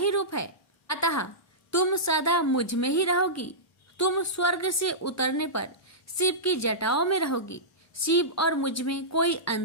रूप है, अतः तुम सदा मुझ में ही रहोगी। तुम स्वर्ग से उतरने पर शिव की जटाओं में रहोगी। शिव और मुझ में कोई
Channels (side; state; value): both; normal; correlation -0.16